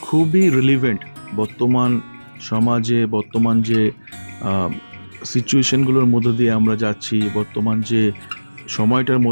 খুবই রিলিভেন্ট বর্তমান সমাজে, বর্তমান যে সিচুয়েশনগুলোর মধ্যে দিয়ে আমরা যাচ্ছি, বর্তমান যে সময়টার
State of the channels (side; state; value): both; inverted; correlation -1.00